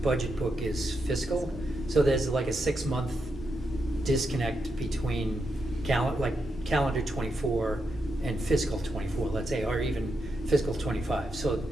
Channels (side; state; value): both; normal; correlation 0.84